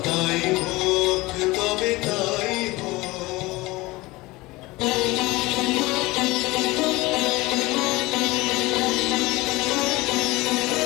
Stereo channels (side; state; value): right; quieter; 21.1 dB